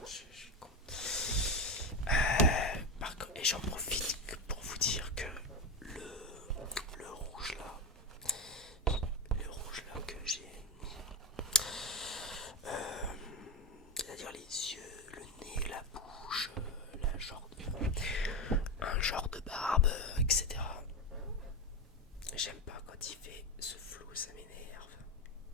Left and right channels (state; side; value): normal; both; correlation 0.14